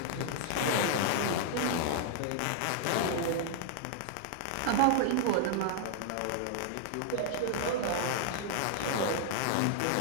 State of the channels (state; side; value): different; both; correlation -0.01